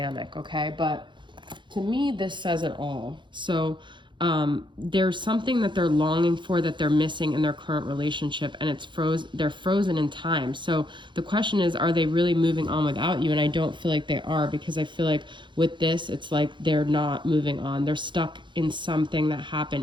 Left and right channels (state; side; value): late; left; 0.23 ms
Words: okay? But to me, this says it all. So there's something that they're longing for that they're missing in their current relationship, and they're frozen in time. So the question is, are they really moving on without you? And I don't feel like they are, because I feel like with this, it's like they're not moving on. They're stuck in something that happened